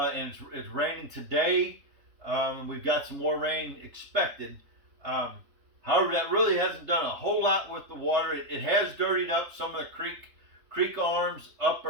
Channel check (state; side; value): late; left; 3.3 ms